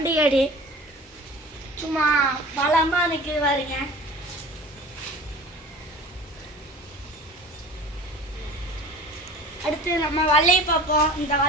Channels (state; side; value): normal; both; correlation 0.40